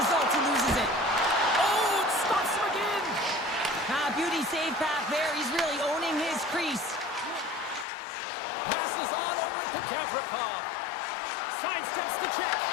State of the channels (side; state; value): right; drops out; at 7.9 s